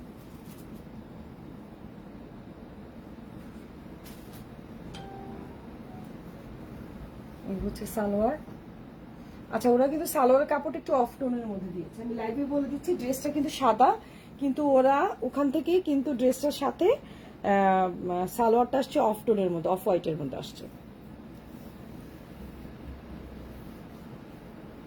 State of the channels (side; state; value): both; identical; correlation 1.00